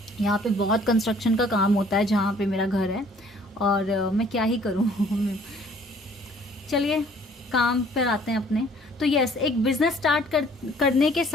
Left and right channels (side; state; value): both; normal; correlation 0.57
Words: यहाँ पे बहुत कंस्ट्रक्शन का काम होता है जहाँ पे मेरा घर है, और मैं क्या ही करूँ। चलिए काम पर आते हैं अपने। तो यस, एक बिजनेस स्टार्ट करने के